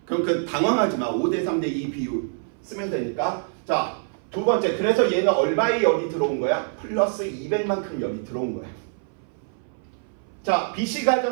그럼 그 당황하지 마. 5대 3대 2 비율 쓰면 되니까. 자, 두 번째. 그래서 얘는 얼마의 열이 들어온 거야? 플러스 200만큼 열이 들어온 거야. 자, BC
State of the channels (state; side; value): silent; left; 59 dB below the other